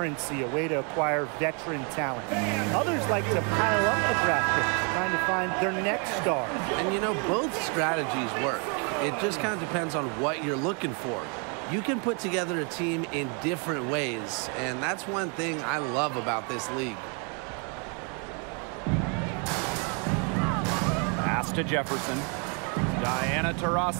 a way to acquire veteran talent. Others like to pile up the draft picks, trying to find their next star. And you know, both strategies work. It just kind of depends on what you're looking for. You can put together a team in different ways, and that's one thing I love about this league. Pass to Jefferson. Diana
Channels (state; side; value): quieter; left; 35.9 dB